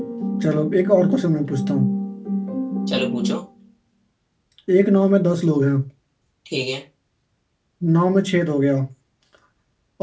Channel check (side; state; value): both; identical; correlation 1.00